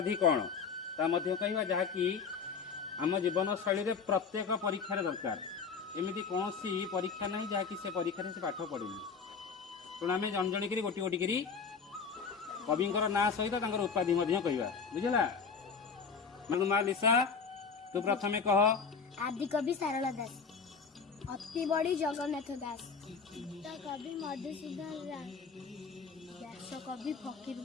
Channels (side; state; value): right; quieter; 5.6 dB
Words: कौन ता मध्य कहवा जहाँकि आम जीवन शैली रे प्रत्येक परीक्षा दरकार एमती कौन परीक्षा नहीं जहाँकि से परीक्षा से पाठ पढ़ेनि तेणु आम जन जन गोटी गोटी कवि ना सहित उपाधि कहवा बुझला माँ लिसा तू प्रथमे कह। आदि कवि सारला दास, अति बड़ी जगन्नाथ दास, कवि मधुसूदन राय, व्यास कवि फकीर